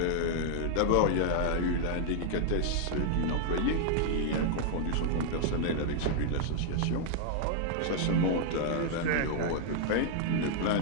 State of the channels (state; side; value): different; both; correlation -0.01